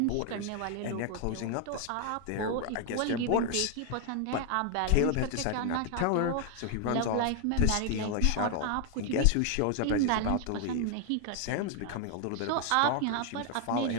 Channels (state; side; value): different; both; correlation 0.00